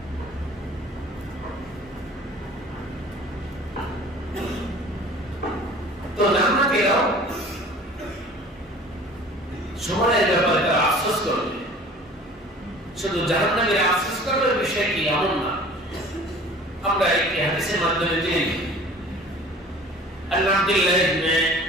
তো জান্নাতীরাও সময়ের ব্যাপারে তারা আফসোস করবে। শুধু জাহান্নামীরা আফসোস করবে বিষয় কি এমন না। আমরা একটি হাদিসের মাধ্যমে জেনে আব্দুল্লাহ ইবনে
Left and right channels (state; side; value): normal; both; correlation 0.46